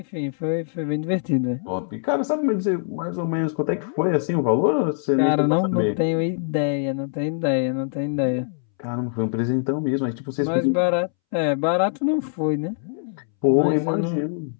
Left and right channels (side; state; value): right; silent; 63 dB below the other